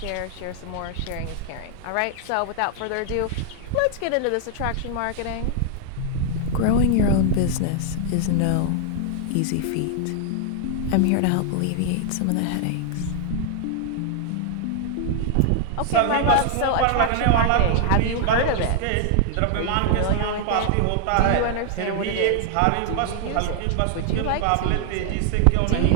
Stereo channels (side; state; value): both; different; correlation 0.00